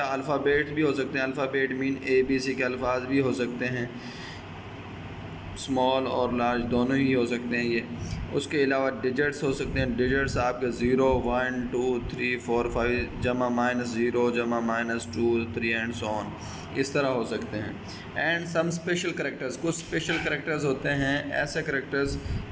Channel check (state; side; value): identical; both; correlation 1.00